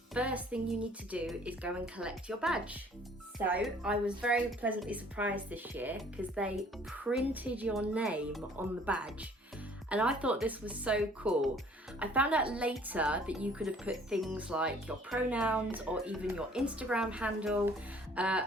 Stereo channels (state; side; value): normal; both; correlation 0.56